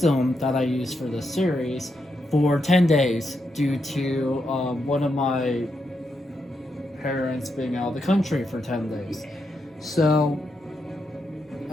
that I use for this series for 10 days due to one of my parents being out of the country for 10 days. So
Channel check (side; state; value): both; normal; correlation 0.83